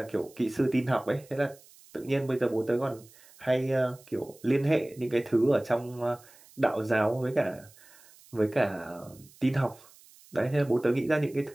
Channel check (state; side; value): noise; right; hiss, 25 dB below the sound